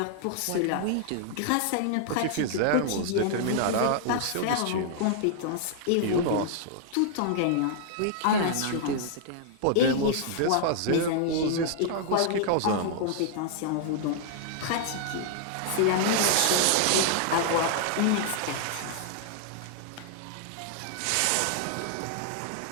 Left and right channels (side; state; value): both; different; correlation -0.01